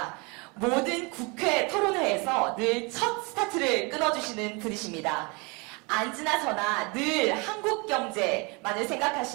모든 국회 토론회에서 늘 첫 스타트를 끊어주시는 분이십니다. 앉으나 서나 늘 한국 경제만을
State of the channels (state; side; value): quieter; left; 29.2 dB